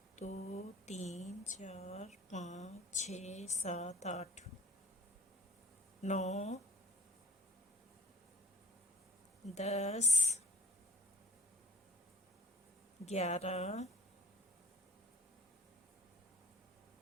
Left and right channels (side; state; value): both; normal; correlation 0.48